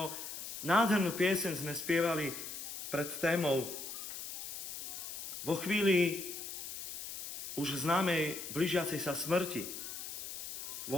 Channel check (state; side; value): noise; left; hiss, 7 dB below the sound